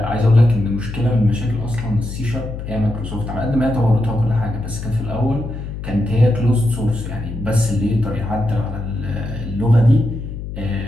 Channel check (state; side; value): noise; left; hum, 8 dB below the sound